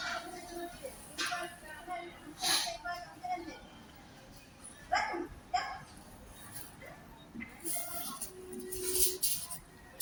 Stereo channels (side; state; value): both; identical; correlation 1.00